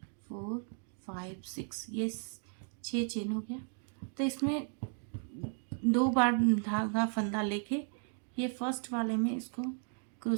4 5 6, ये 6 चेन हो गया। तो इसमें 2 बार धागा फंदा लेके ये फर्स्ट वाले में इसको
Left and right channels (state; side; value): silent; left; 54 dB below the other